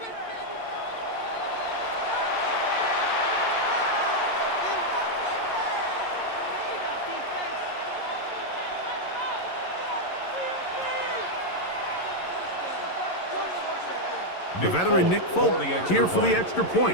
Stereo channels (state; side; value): late; right; 11 ms